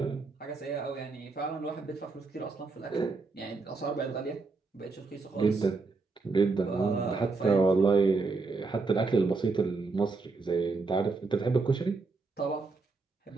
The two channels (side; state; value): left; quieter; 4.0 dB